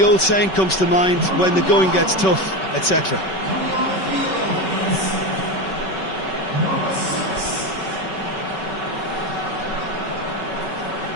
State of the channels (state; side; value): late; right; 5.3 ms